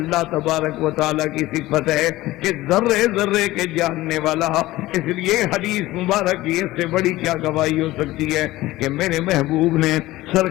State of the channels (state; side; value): quieter; right; 17.5 dB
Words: تبارک و تعالیٰ کی صفت ہے کہ ذرے ذرے کے جاننے والا. اس لیے حدیث مبارک کی اس سے بڑی کیا گواہی ہو سکتی ہے کہ میرے محبوب نے